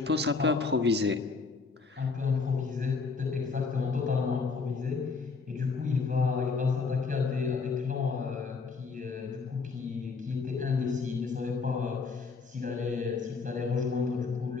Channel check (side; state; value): right; quieter; 4.7 dB